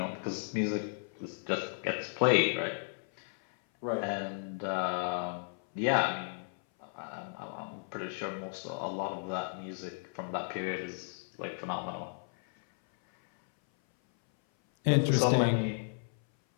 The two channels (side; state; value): right; silent; 55 dB below the other